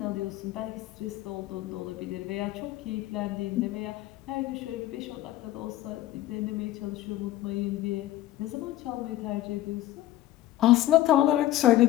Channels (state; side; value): quieter; right; 14.8 dB